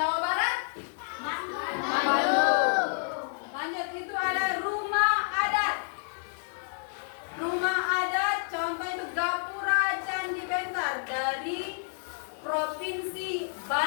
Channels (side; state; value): right; silent; digital silence